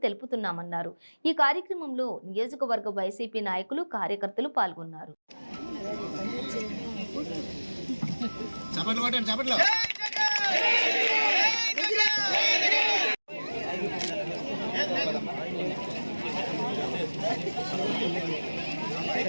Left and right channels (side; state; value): both; inverted; correlation -1.00